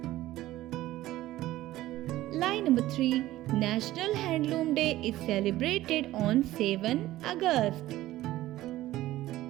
Line number 3. National Handloom Day is celebrated on 7 August.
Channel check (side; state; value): left; quieter; 15.7 dB